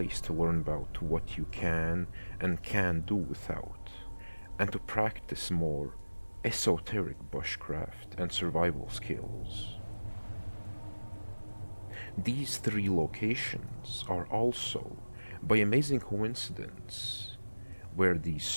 to learn about what you can and can't do without, and to practice more esoteric bushcraft and survival skills. These three locations are also, by amazing coincidence, where these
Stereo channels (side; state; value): both; inverted; correlation -1.00